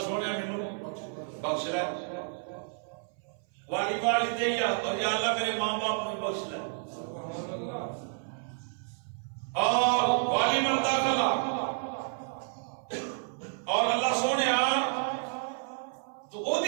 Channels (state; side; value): silent; left; 57 dB below the other